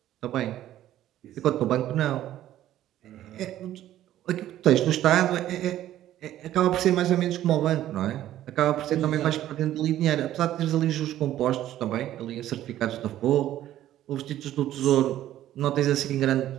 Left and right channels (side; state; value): left; quieter; 12.9 dB